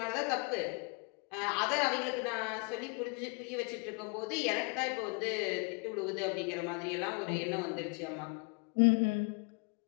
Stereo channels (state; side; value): quieter; right; 34.1 dB